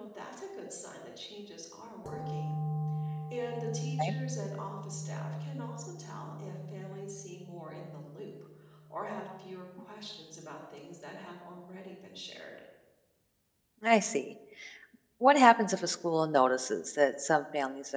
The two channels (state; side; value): identical; both; correlation 1.00